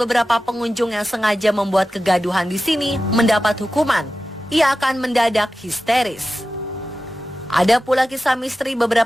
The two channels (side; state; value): both; normal; correlation 0.94